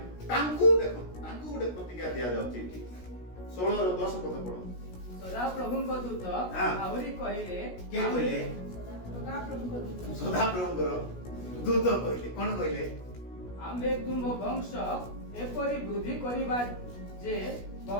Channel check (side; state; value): right; late; 16 ms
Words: তাঙ্কু দেখুন, তাঙ্কু ଗୋଟେ ପ୍ରତିଜ୍ଞା ଦିଆଯାଉଛି। 16-10 ପଦ ପଢନ୍ତୁ। ସଦାପ୍ରଭୁଙ୍କ ଦୂତ ଆହୁରି କହିଲେ, କେ କହିଲେ? ସଦାପ୍ରଭୁଙ୍କର ଦୂତ କହିଲେ। କଣ କହିଲେ? ଆମ୍ଭେ ତୁମ ବଂଶ ଏପରି ବୃଦ୍ଧି କରିବା ଯେ